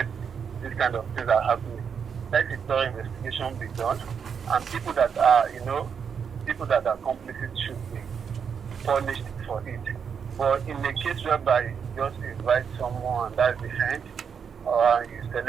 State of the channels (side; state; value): left; quieter; 6.9 dB